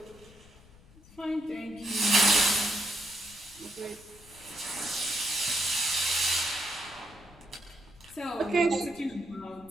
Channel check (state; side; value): noise; left; rumble, 24 dB below the sound